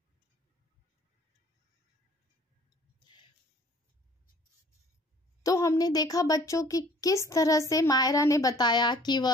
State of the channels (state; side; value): normal; both; correlation 0.53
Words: तो हमने देखा बच्चों की किस तरह से मायरा ने बताया कि